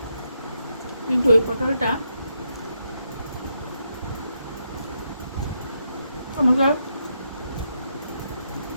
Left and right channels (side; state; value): both; inverted; correlation -0.81